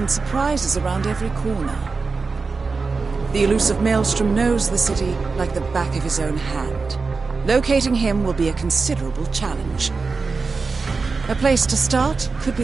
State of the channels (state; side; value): quieter; left; 4.4 dB